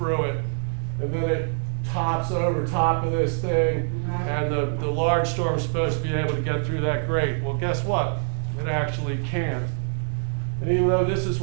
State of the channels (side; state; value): left; silent; digital silence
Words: it. And then it tops over top of this thing, and the large storm is supposed to be able to get through that grate. Well, guess what? It actually can't. And even though this is